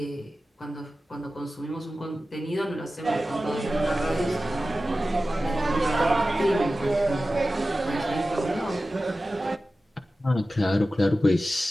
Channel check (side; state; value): both; normal; correlation 0.95